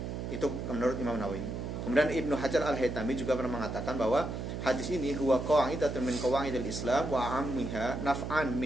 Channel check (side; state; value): right; noise; hum, 5 dB below the sound